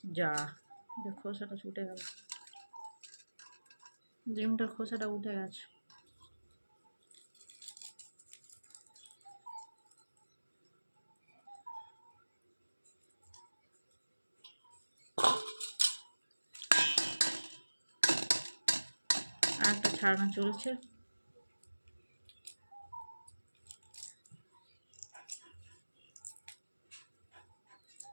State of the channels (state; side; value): inverted; both; correlation -1.00